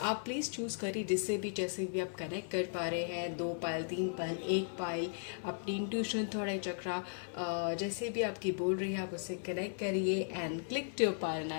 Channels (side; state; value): right; silent; 53 dB below the other